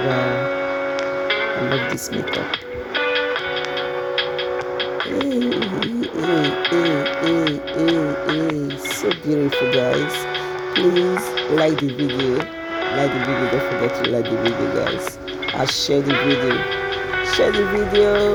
I love this makeup. So beautiful, guys. Please like the video. Don't forget to like the video, guys. And share the video. Share the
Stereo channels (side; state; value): both; identical; correlation 1.00